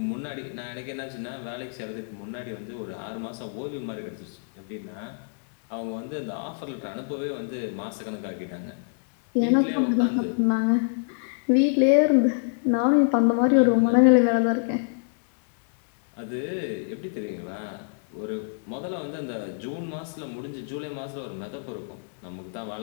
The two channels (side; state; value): right; silent; 61 dB below the other